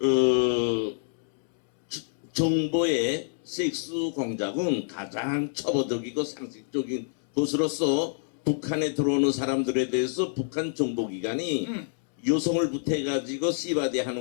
정보의 섹스 공작은 가장 처벌적이고 상식적인 것으로서 북한에 들어오는 사람들에 대해서 북한 정보기관이 여성을 부태가지고 씨바디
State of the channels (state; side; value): silent; right; 59 dB below the other